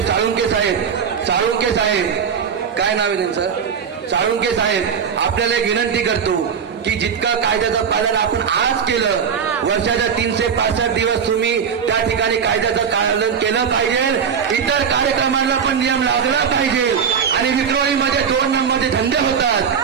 साळुंके साहेब काय नाव आहे त्यांचं, साळुंके साहेब, आपल्याला एक विनंती करतो की जितकं कायद्याचं पालन आपण आज केलं, वर्षाच्या 365 दिवस तुम्ही त्या ठिकाणी कायद्याचं पालन केलं पाहिजे. इतर कार्यक्रमांना पण नियम लावला पाहिजे. आणि विक्रोळीमध्ये 2 नंबरचे धंदे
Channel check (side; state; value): left; quieter; 7.0 dB